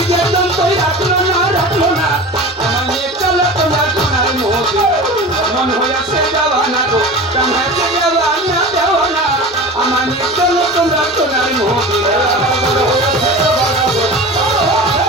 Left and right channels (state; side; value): normal; both; correlation 0.34